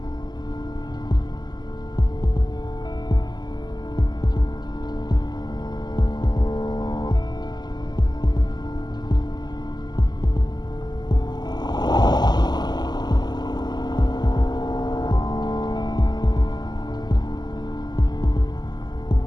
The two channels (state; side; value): late; right; 0.20 ms